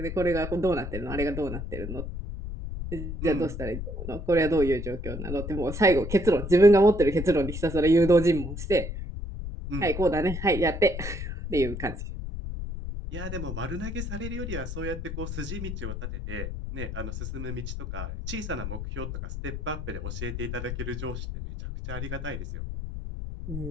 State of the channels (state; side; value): noise; left; rumble, 6 dB below the sound